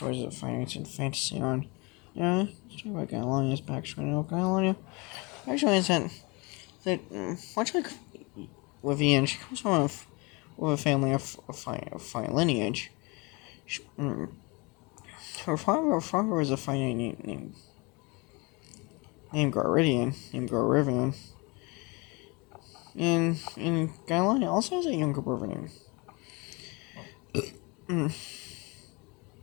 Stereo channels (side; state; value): right; quieter; 27.9 dB